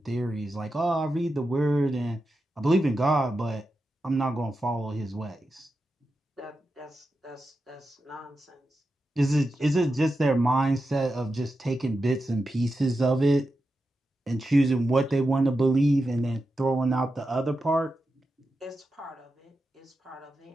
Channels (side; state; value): both; normal; correlation 0.89